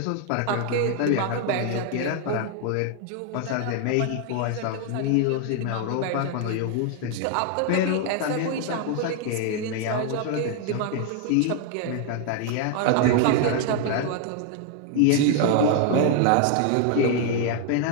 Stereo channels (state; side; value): different; both; correlation 0.00